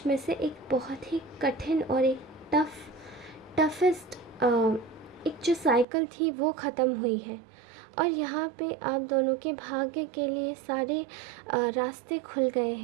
में से एक बहुत ही कठिन और एक टफेस्ट एक जो साइकिल थी वो ख़त्म हुई है और यहाँ पे आप दोनों के भाग्य के लिए सारे रास्ते खुल गए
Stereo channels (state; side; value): drops out; left; at 5.9 s